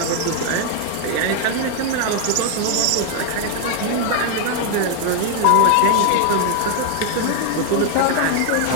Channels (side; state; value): both; different; correlation 0.01